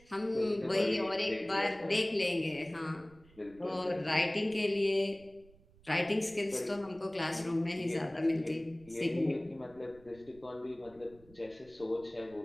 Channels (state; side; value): noise; right; rumble, 25 dB below the sound